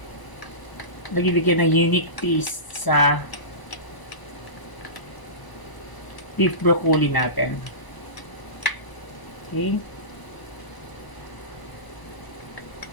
Nagbibigay ng unique taste sa beef broccoli natin. Okay.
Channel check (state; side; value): late; right; 1.0 ms